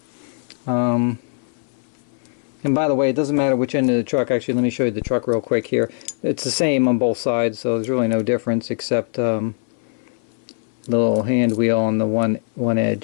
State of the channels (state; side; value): silent; right; 63 dB below the other